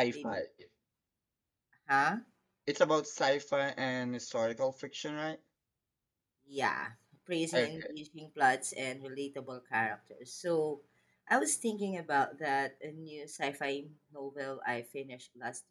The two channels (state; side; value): identical; both; correlation 1.00